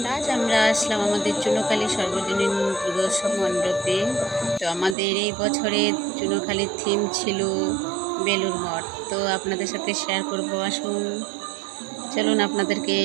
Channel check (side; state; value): left; drops out; at 5.0 s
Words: আজ আমরা আসলাম আমাদের চুনোখালী সর্বজনীন দুর্গোৎসব মণ্ডপে। তো আমাদের এই বছরের চুনোখালীর থিম ছিল বেলুড় মঠ। তো আপনাদের সাথে শেয়ার করবো, আসুন চলুন আপনাদেরকে